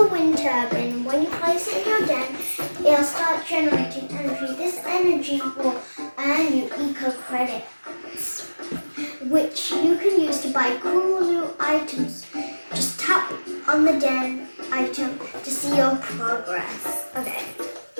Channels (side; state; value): both; inverted; correlation -1.00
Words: wind turbine. When you place it in your den, it'll start generating energy. This energy will earn you eco credits, which you can use to buy cool new items. Just tap on the den item to see your progress. Okay,